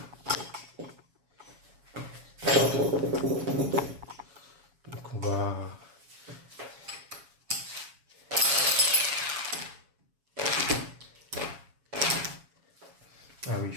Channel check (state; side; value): late; left; 7.2 ms